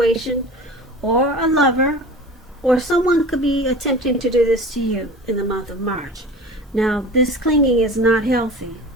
or a lover, or someone could be attempting to do this to you in the month of March. Now, this clinging is not healthy,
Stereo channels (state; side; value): normal; both; correlation 0.37